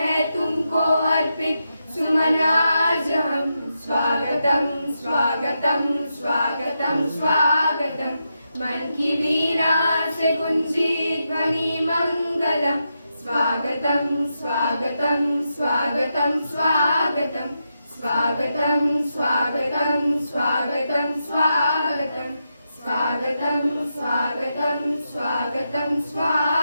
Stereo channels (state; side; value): inverted; both; correlation -0.85